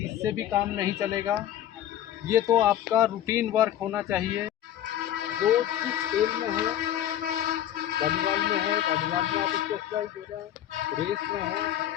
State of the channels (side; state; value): right; quieter; 11.7 dB